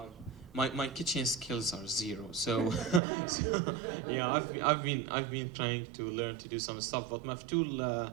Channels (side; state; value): left; drops out; at 3.0 s